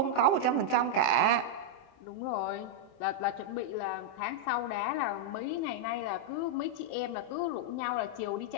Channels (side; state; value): right; late; 27 ms